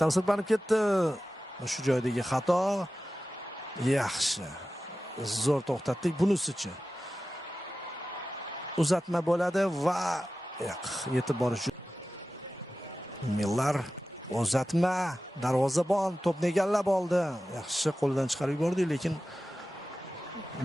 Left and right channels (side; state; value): both; normal; correlation 0.94